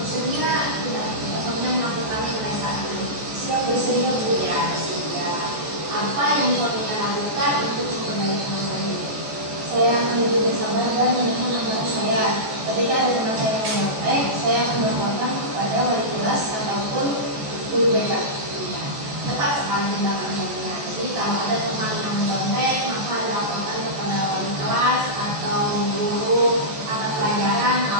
tidak suaminya melakukannya mulai saat ini? Siap bersedia Bu ya, bersedia. Apa yang suaminya lakukan untuk memperbaiki masalah ini? Saya akan lebih bersabar dan menekan amanah saya. Ketika ada teman saya yang nyontek, saya akan melaporkan kepada wali kelas ataupun guru BK. Tepat sekali tindakan saya. Jadi kalau ada teman yang nyontek, maka dilaporkan kepada wali kelas atau guru mata pelajaran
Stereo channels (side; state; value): left; late; 14 ms